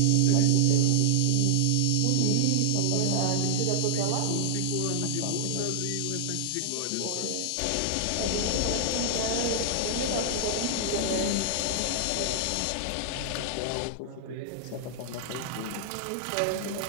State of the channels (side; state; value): both; different; correlation -0.01